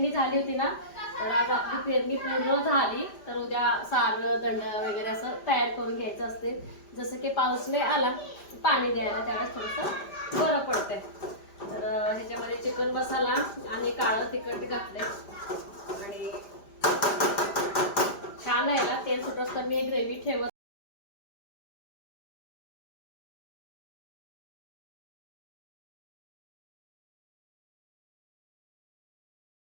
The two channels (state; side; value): late; right; 5.0 ms